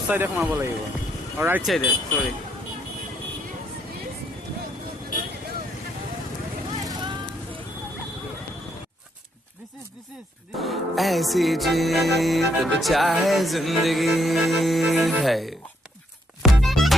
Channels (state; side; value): normal; both; correlation 0.73